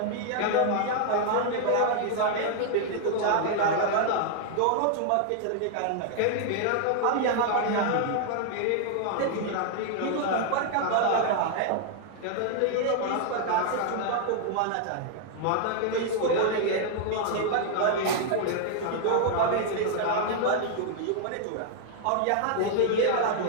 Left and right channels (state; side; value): different; both; correlation 0.00